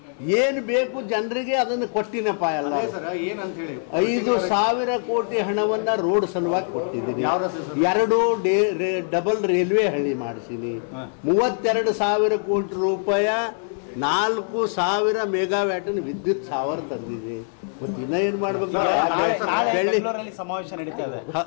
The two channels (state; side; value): silent; right; 63 dB below the other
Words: ಏನು ಬೇಕು ಜನರಿಗೆ ಅದನ್ನು ಕೊಟ್ಟಿನಪ್ಪ. ಎಲ್ಲ 5,000 ಕೋಟಿ ಹಣವನ್ನ ರೋಡ್ ಸಲುವಾಗಿ ಕೊಟ್ಟಿದ್ದೀನಿ. 2 ಡಬಲ್ ರೈಲ್ವೆ ಹಳಿ ಮಾಡಿಸೀನಿ. 32,000 ಕೋಟಿ ರೂಪಾಯಿ 4,000 ಮೆಗಾವ್ಯಾಟಿನ ವಿದ್ಯುತ್ ಸಾವಿರ ತಂದಿದ್ದೀನಿ. ಏನ್ ಮಾಡ್ಬೇಕು? ಬೆಂಗಳೂರಲ್ಲಿ ಸಮಾವೇಶ ನಡೀತಾ ಇದೆ.